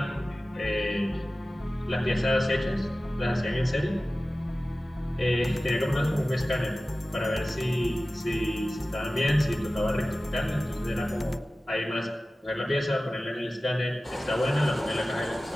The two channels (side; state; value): both; normal; correlation 0.96